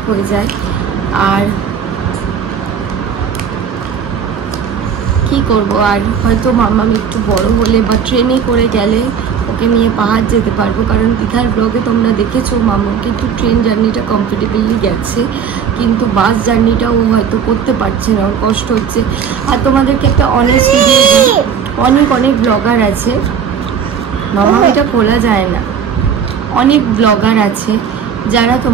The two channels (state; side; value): quieter; left; 7.3 dB